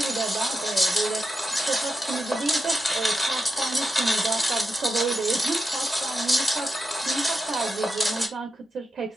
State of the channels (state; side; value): normal; both; correlation 0.88